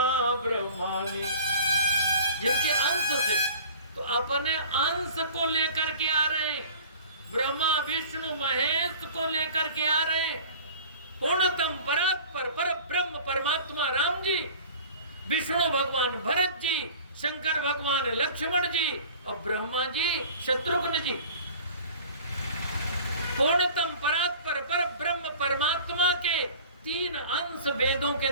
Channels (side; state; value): both; inverted; correlation -0.44